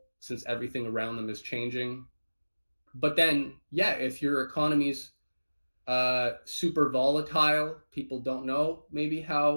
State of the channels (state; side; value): inverted; both; correlation -1.00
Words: since everything around them is changing. But then, yeah, if your economy's super volatile, people don't know maybe